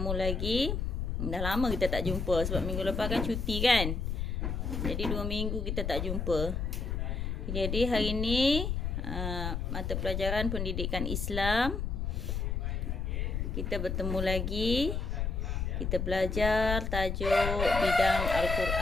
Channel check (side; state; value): left; noise; rumble, 2 dB below the sound